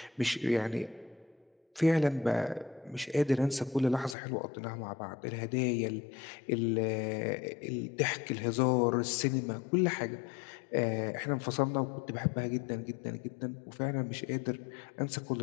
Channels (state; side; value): drops out; right; at 4.2 s